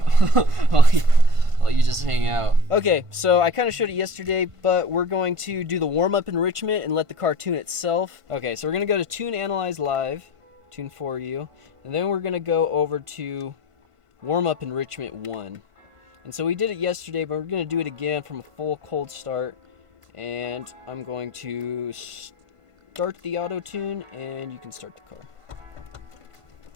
while you just hang out. Okay, so I kind of showed it yesterday, but we're going to do the warm-up enrichment and let the car tune itself. Okay, so we're gonna go to Tune Analyze Live, Tune for You, and then we're gonna go over to Warm-up Enrichment 1. And so we did it yesterday, but we're gonna do it again from a full cold start. And I'm going to start the auto tune, and you can start the car.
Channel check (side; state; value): left; late; 1.5 ms